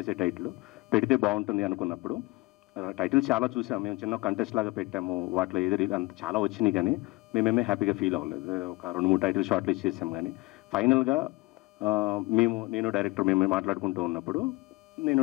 టైటిల్ పెడితే బాగుంటుంది అనుకున్నప్పుడు టైటిల్ చాలా చూసాము. మేము చిన్న కంటెస్ట్ లాగా పెట్టాము, వాటిలో ఏది అంత చాలా వచ్చినాయి కానీ మేమేమే హ్యాపీగా ఫీల్ అవ్వలేదు. ఒక 2-3 టైటిల్ షార్ట్ లిస్ట్ చేసాం కానీ ఫైనల్గా నేను డైరెక్టర్ మేము మాట్లాడుకుంటూ ఉన్నప్పుడు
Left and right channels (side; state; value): right; quieter; 22.6 dB